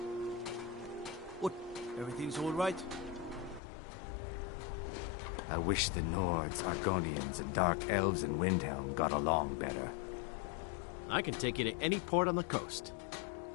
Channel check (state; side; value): drops out; right; at 3.6 s